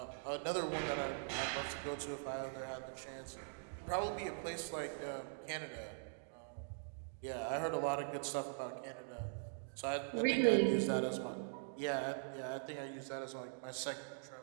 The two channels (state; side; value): silent; left; digital silence